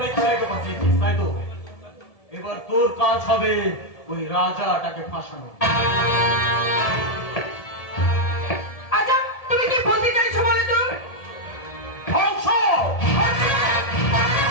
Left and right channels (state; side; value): late; right; 1.7 ms